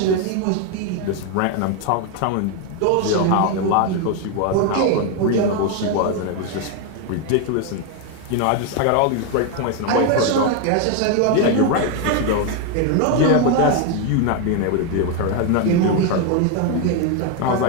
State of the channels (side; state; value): both; different; correlation 0.01